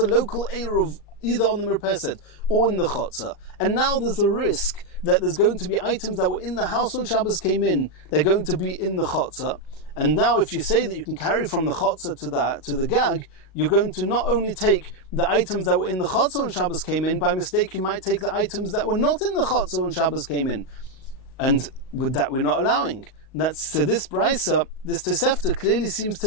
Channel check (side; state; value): right; late; 38 ms